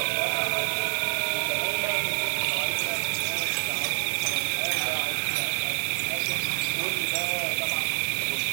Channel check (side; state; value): left; silent; 57 dB below the other